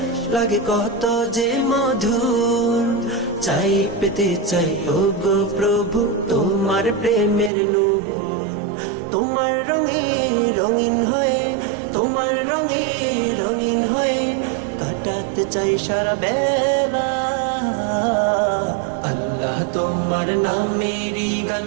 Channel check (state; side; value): drops out; left; at 7.5 s